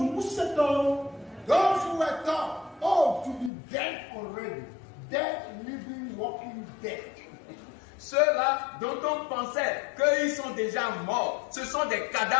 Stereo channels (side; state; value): right; drops out; at 3.5 s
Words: Those who were taught, to be dead already, dead, living, walking dead. Ceux-là dont on pensait qu'ils sont déjà morts, ce sont des